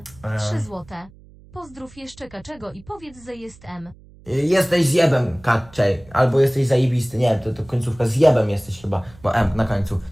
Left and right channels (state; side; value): noise; right; hum, 24 dB below the sound